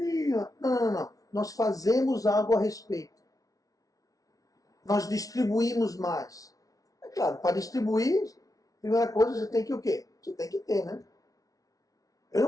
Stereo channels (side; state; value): right; late; 0.18 ms